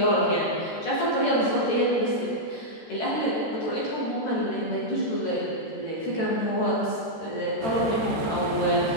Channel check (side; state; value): right; late; 13 ms